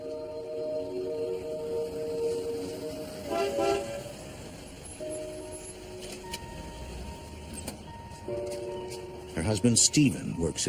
Her husband Stephen works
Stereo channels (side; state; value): both; identical; correlation 1.00